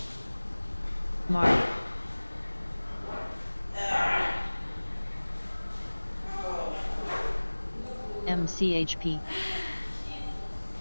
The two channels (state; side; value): inverted; both; correlation -1.00